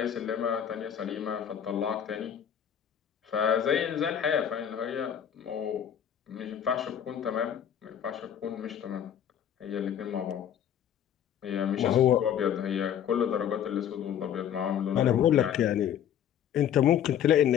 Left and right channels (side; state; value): right; quieter; 9.4 dB